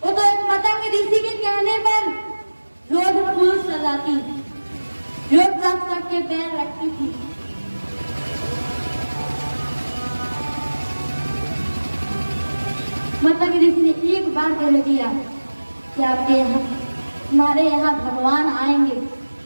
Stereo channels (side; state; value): both; inverted; correlation -1.00